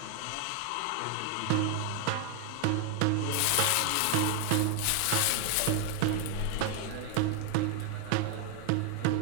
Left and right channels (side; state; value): both; different; correlation 0.01